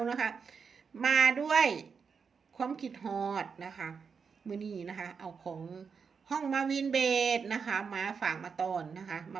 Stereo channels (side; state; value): left; quieter; 5.9 dB